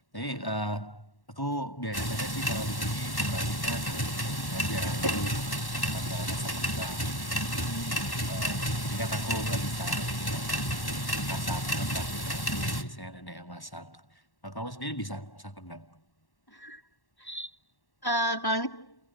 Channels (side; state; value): right; late; 1.1 ms